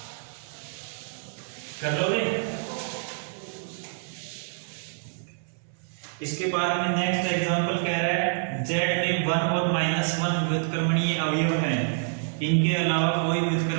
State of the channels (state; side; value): silent; left; 60 dB below the other